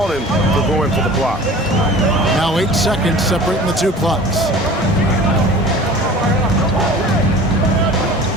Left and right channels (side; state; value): both; normal; correlation 0.42